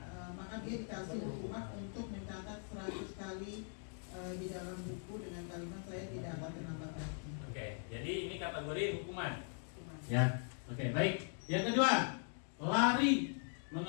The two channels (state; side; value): silent; right; 51 dB below the other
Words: maka dia dikasih hukuman untuk mencatat 100 kali di dalam buku dengan kalimat saya tidak akan terlambat lagi. Oke, jadi ini kategori hukuman. Ya. Oke, baik. Yang kedua, lari